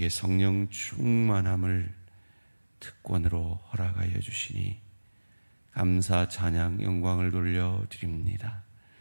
성령 충만함을 특권으로 허락하여 주시니 감사, 찬양, 영광을 돌려드립니다.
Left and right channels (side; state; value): both; inverted; correlation -1.00